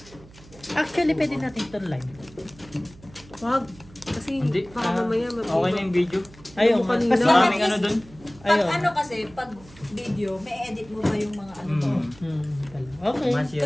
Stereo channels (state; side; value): noise; right; hum, 22 dB below the sound